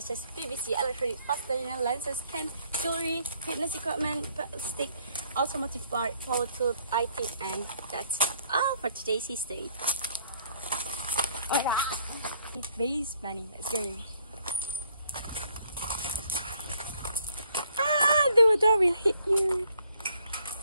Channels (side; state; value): both; inverted; correlation -0.66